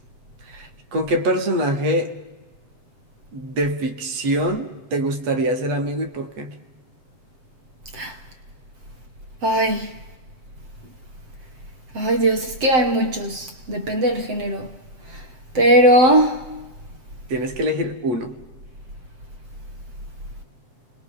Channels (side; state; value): left; late; 7.7 ms